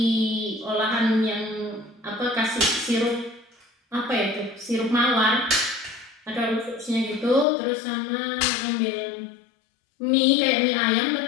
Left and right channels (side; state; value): right; drops out; at 7.5 s